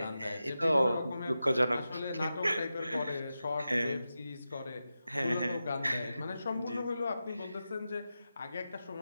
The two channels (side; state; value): both; inverted; correlation -0.91